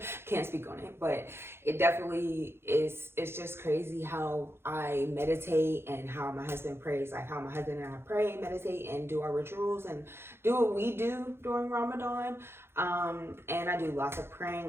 can't speak on it, but it definitely is. It's just crazy how I meditate and how my husband prays, like how my husband and I pray, meditate, and do our rituals and do what we do during Ramadan. And I do lots of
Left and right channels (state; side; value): late; left; 0.12 ms